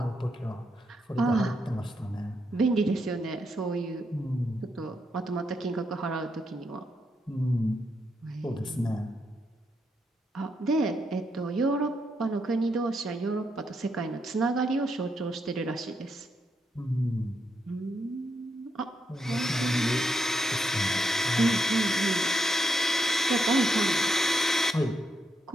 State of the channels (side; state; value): both; normal; correlation 0.80